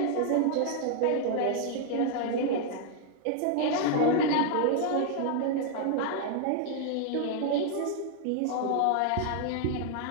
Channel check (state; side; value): different; both; correlation 0.00